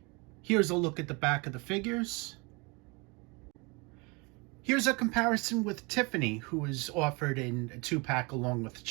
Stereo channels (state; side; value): quieter; left; 28.6 dB